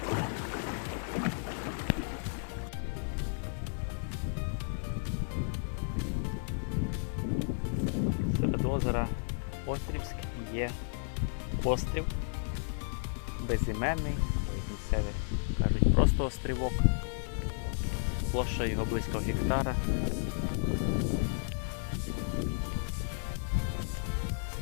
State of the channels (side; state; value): right; silent; digital silence